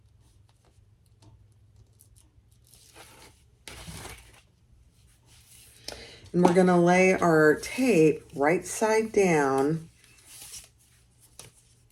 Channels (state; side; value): identical; both; correlation 1.00